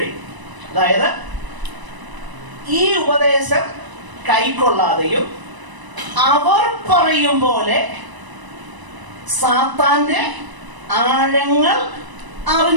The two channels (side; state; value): left; late; 1.0 ms